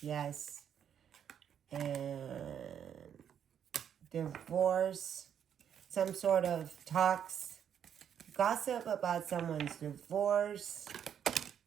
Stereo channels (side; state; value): left; quieter; 8.7 dB